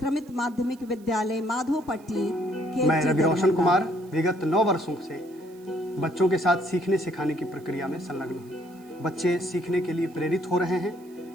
माध्यमिक विद्यालय माधोपट्टी के। मैं रवि रोशन कुमार विगत 9 वर्षों से बच्चों के साथ सीखने सिखाने की प्रक्रिया में संलग्न हूँ। बच्चे सीखने के लिए प्रेरित हो रहे हैं।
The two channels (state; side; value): noise; right; hiss, 28 dB below the sound